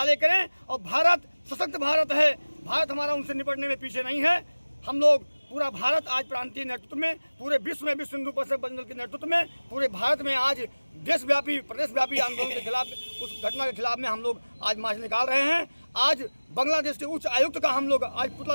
करें। और भारत सशक्त भारत है, भारत हमारा उनसे निपटने में पीछे नहीं है। हम लोग पूरा भारत आज प्रांतीय नेतृत्व में, पूरे विश्व में विश्व हिंदू परिषद बजरंग दल के नेतृत्व में पूरे भारत में आज देशव्यापी प्रदेशव्यापी आंदोलन के खिलाफ, उस घटना के खिलाफ में हम लोग आज मार्च निकाल रहे हैं। आज बांग्लादेश के उच्च आयुक्त का हम लोग आज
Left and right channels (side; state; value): both; inverted; correlation -1.00